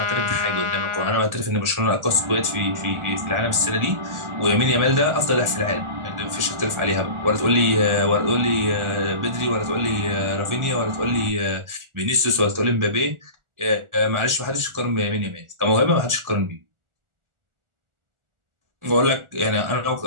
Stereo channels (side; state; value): left; late; 1.4 ms